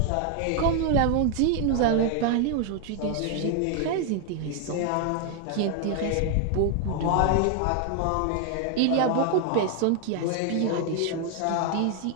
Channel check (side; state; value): both; different; correlation 0.00